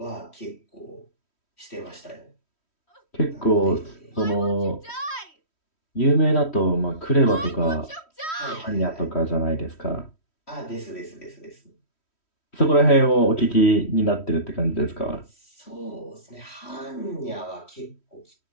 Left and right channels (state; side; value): late; right; 3.1 ms